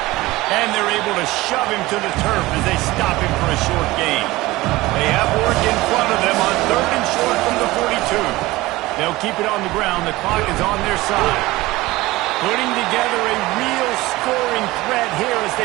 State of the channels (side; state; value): left; quieter; 19.3 dB